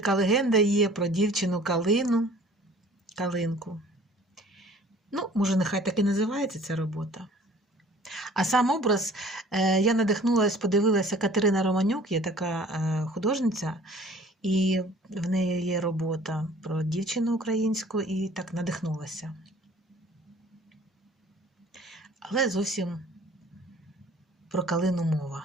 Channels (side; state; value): both; normal; correlation 0.51